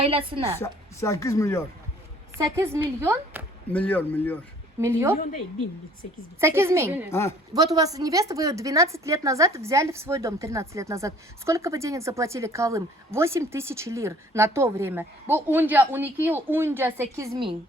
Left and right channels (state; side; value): normal; both; correlation 0.55